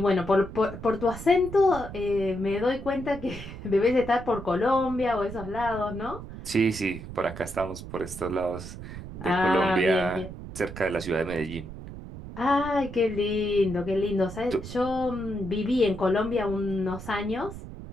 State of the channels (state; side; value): noise; right; rumble, 11 dB below the sound